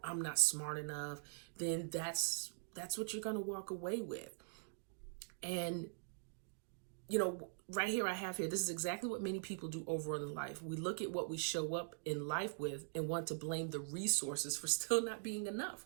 I'm not smart enough, then that's what you're going to walk away with. And right here I have here, this is exactly what many people do overall in life. We look at what we show up in life with and want to blame the resources for still not being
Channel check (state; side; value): silent; left; digital silence